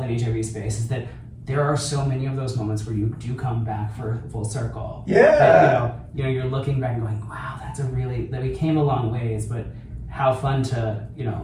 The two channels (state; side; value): identical; both; correlation 1.00